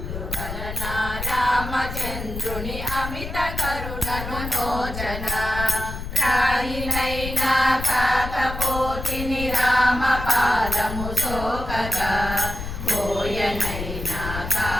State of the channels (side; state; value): left; noise; rumble, 7 dB below the sound